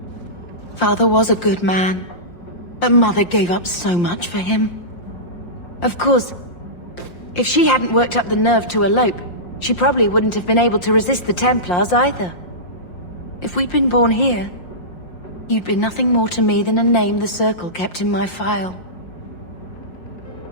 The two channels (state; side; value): late; right; 5.7 ms